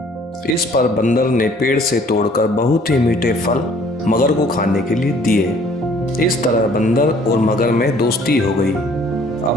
इस पर बंदर ने पेड़ से तोड़कर बहुत ही मीठे फल मगर को खाने के लिए दिए। इस तरह बंदर और मगर में दोस्ती हो गई। अब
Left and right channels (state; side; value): normal; both; correlation 0.57